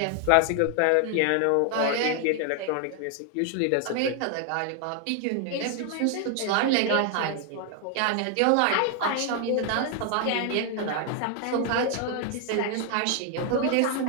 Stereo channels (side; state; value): both; different; correlation 0.00